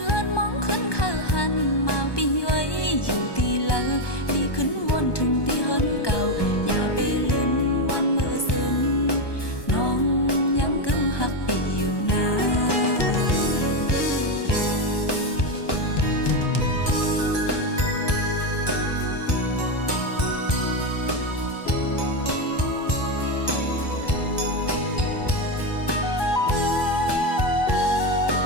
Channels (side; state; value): right; late; 1.2 ms